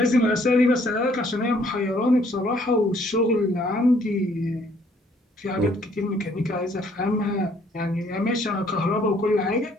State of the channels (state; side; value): normal; both; correlation 0.63